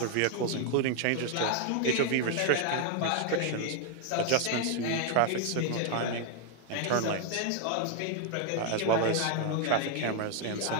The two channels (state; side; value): different; both; correlation 0.00